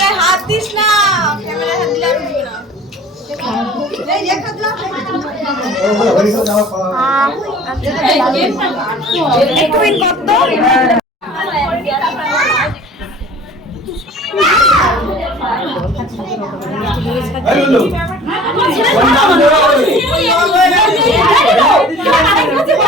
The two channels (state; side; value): normal; both; correlation 0.46